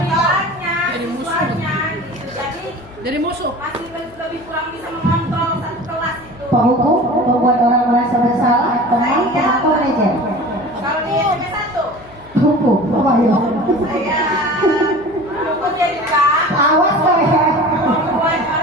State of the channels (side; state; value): left; noise; hum, 23 dB below the sound